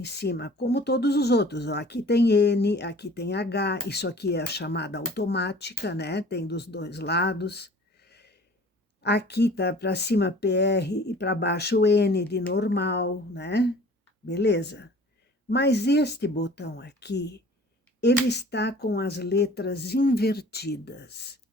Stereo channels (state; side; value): normal; both; correlation 0.47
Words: cima, como todos os outros. Ó, aqui tem N, aqui tem H, isso aqui é a chamada automática, né? Tem dos 2 lados. Aqui tá para cima PR e para baixo N de normal, né? Beleza? Mas este botão aqui, ele está com as letras invertidas,